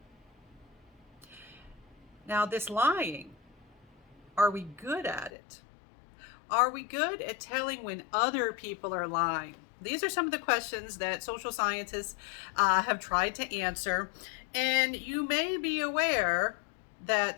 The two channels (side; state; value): right; drops out; at 5.3 s